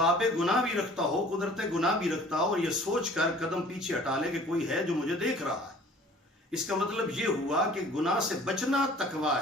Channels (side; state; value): both; normal; correlation 0.50